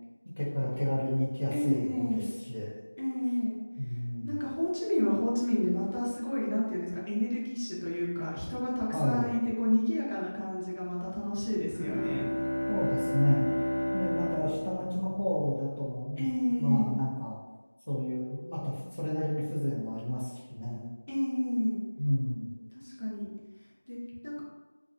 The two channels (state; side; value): inverted; both; correlation -1.00